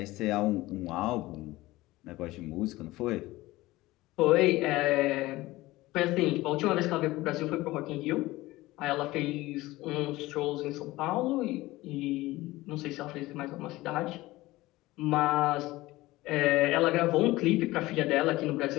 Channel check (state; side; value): quieter; right; 18.7 dB